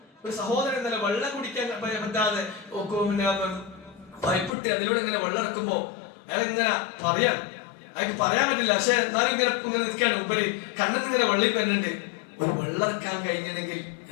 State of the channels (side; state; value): right; drops out; at 4.5 s